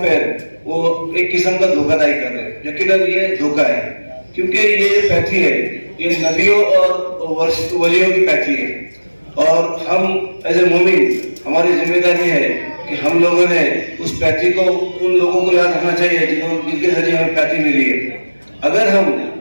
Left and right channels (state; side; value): inverted; both; correlation -1.00